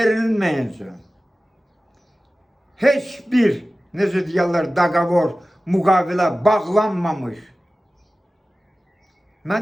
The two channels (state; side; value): normal; both; correlation 0.96